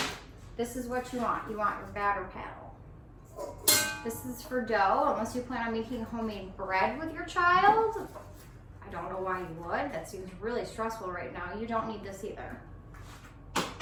This is what you want. You want your batter paddle. This is for dough, unless you plan on making homemade bread with your child. I don't know why you would. That seems really stressful right now. You don't need this either.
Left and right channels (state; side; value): identical; both; correlation 1.00